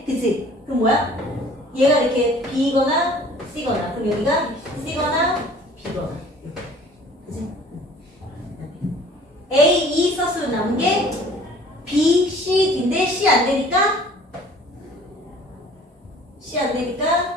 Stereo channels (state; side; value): normal; both; correlation 0.50